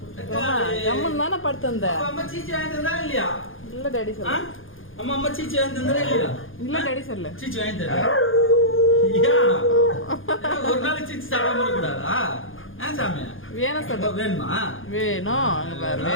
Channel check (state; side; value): late; right; 0.59 ms